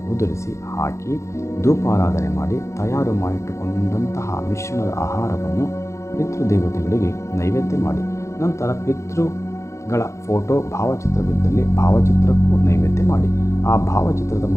ಉದುರಿಸಿ ಹಾಕಿ ಧೂಪಾರಾಧನೆ ಮಾಡಿ ತಯಾರು ಮಾಡಿಟ್ಟುಕೊಂಡಂತಹ ಮಿಶ್ರಣದ ಆಹಾರವನ್ನು ಪಿತೃದೇವತೆಗಳಿಗೆ ನೈವೇದ್ಯ ಮಾಡಿ. ನಂತರ ಪಿತೃಗಳ ಫೋಟೋ ಭಾವಚಿತ್ರವಿದ್ದಲ್ಲಿ ಭಾವಚಿತ್ರಕ್ಕೂ ನೈವೇದ್ಯ ಮಾಡಿ. ಆ ಭಾವಚಿತ್ರದ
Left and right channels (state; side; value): late; right; 0.14 ms